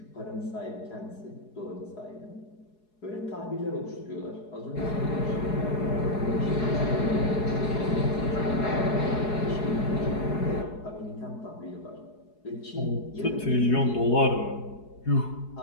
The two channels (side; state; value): right; late; 4.8 ms